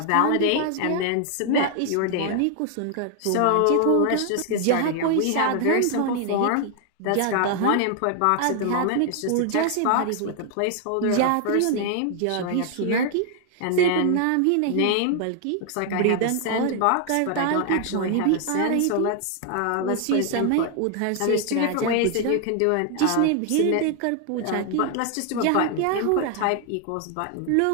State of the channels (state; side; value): different; both; correlation 0.00